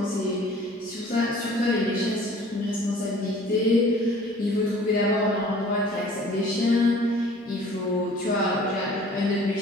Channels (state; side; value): normal; both; correlation 0.50